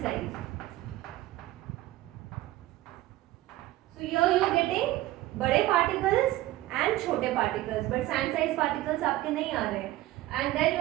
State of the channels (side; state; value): left; quieter; 16.3 dB